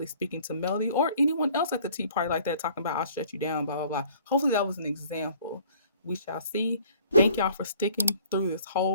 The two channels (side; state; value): both; inverted; correlation -0.54